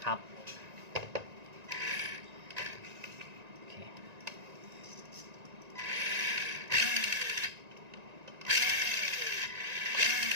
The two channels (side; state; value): left; late; 1.9 ms